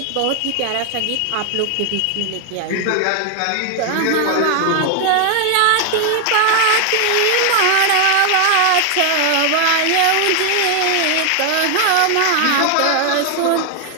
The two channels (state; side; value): different; both; correlation 0.00